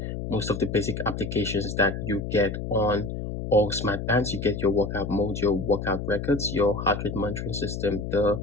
most of the basic applications that you get on all smart bands. You get your workout mode, your workout records, your heart rate monitoring system, the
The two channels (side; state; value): left; noise; hum, 5 dB below the sound